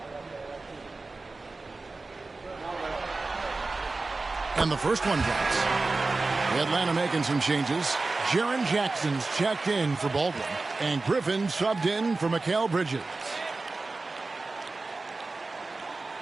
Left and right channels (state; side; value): quieter; left; 3.5 dB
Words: And the first one drops. Atlanta making some changes. Jaren Jackson's checked in for Baldwin. And Griffin subbed in for Mikal Bridges.